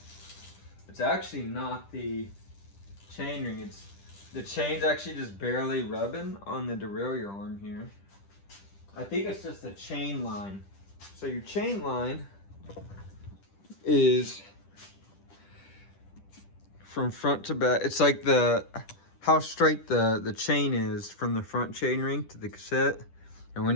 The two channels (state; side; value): late; right; 10 ms